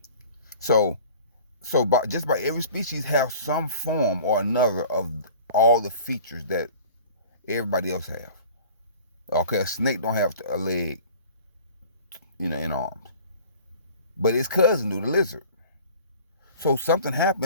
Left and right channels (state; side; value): inverted; both; correlation -0.45